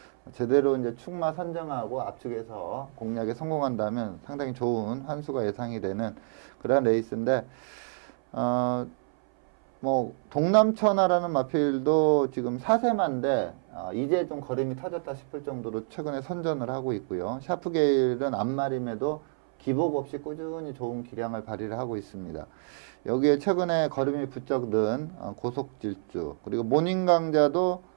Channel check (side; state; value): left; silent; 58 dB below the other